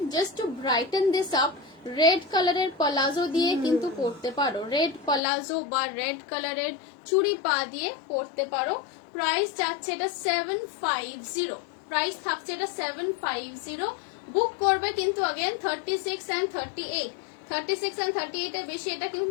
just to brighten this up, red কালারের পলাজো দিয়ে কিন্তু পরতে পারো, রেড পলাজো বা রেড কালারের চুড়ি পা দিয়ে পরতে পারো। প্রাইস যাচ্ছে এটা 750, প্রাইস থাকছে এটা 750। বুক করবে কিন্তু अगेन 36 and 38, 36 and 38 এর বেশি এটা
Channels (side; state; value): right; drops out; at 5.2 s